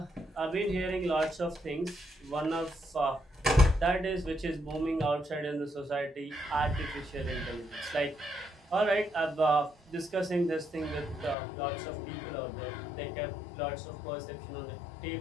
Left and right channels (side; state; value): right; drops out; at 11.4 s